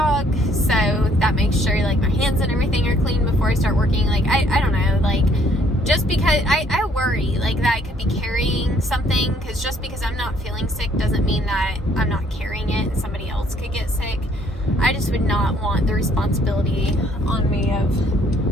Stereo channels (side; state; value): both; normal; correlation 0.64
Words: so that makes sure, like, my hands and everything are clean before I start working. Like, I don't know, like, just because I worry, like, that I could be carrying something, because just because I'm not feeling sick doesn't mean that I'm not carrying it and somebody else could get sick. I just would not want the responsibility on me